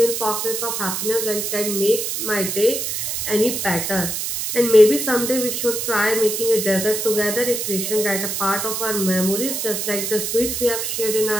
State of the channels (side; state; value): right; noise; hiss, 2 dB below the sound